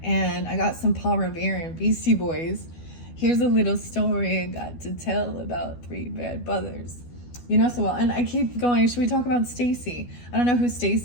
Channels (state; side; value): late; right; 12 ms